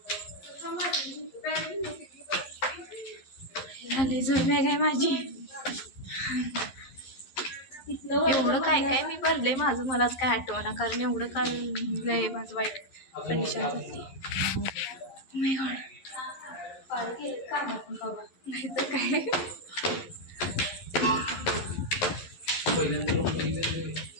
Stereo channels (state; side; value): late; right; 11 ms